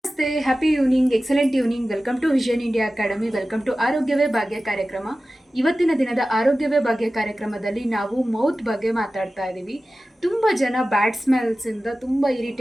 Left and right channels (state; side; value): normal; both; correlation 0.95